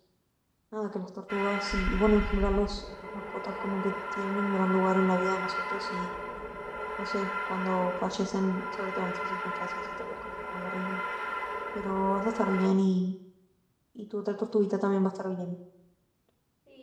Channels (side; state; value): both; identical; correlation 1.00